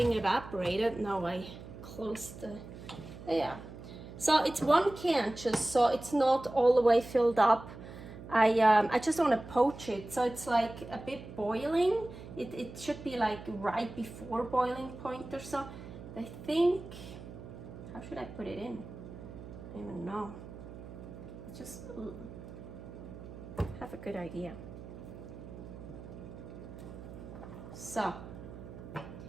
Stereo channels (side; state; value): right; noise; hum, 13 dB below the sound